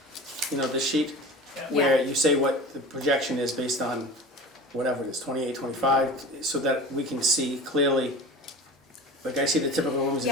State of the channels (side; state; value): both; normal; correlation 0.35